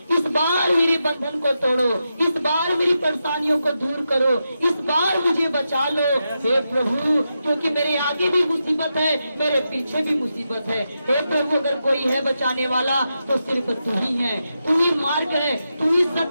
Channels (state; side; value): inverted; both; correlation -0.87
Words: इस बार मेरे बंधन को तोड़ो, इस बार मेरी परेशानियों को दूर करो, इस बार मुझे बचा लो हे प्रभु, क्योंकि मेरे आगे भी मुसीबत है, मेरे पीछे भी मुसीबत है। हे प्रभु, अगर कोई है बचाने वाला तो सिर्फ तू ही है, तू ही मार्ग है, तू ही